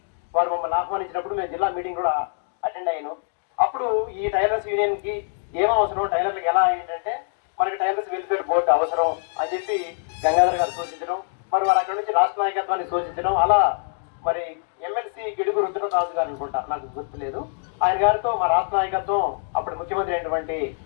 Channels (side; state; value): right; silent; digital silence